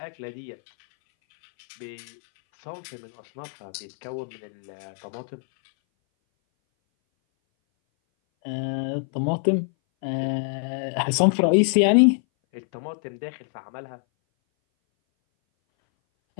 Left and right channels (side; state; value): right; silent; 59 dB below the other